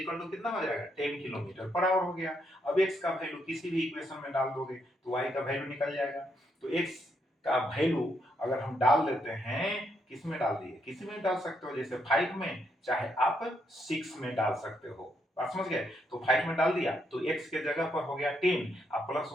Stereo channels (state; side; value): normal; both; correlation 0.77